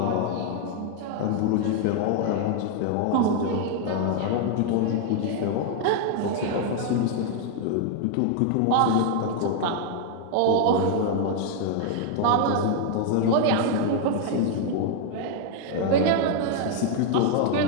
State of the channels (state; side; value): different; both; correlation 0.00